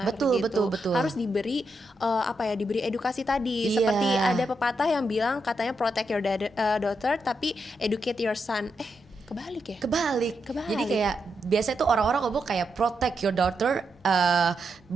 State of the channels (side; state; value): both; normal; correlation 0.83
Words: Betul. Harus diberi diberi edukasi tadi. Seperti ada pepatah yang bilang katanya protect your daughter tapi educate your son. Kebalik ya? Kebalik. Jadi kayak biasanya tuh orang-orang ngomong kayak protect your daughter,